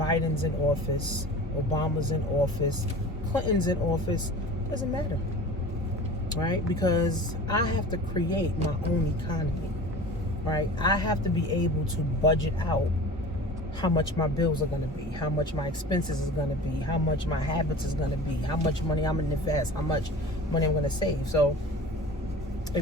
in office, Obama's in office, Clinton's in office. Doesn't matter, right? Because I have to create my own economy, right? I have to be able to budget out how much my bills are going to be, how much my expenses is going to be, how much my habits is going to be, how much money I'm going to invest, how much money I'm going to save. So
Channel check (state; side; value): normal; both; correlation 0.38